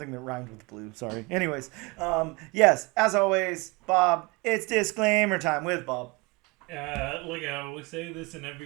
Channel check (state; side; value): quieter; left; 26.8 dB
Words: that rhymed with blue. Sorry. Anyways, yes, as always, Bob, it's disclaimer time with Bob. Look, I always say this in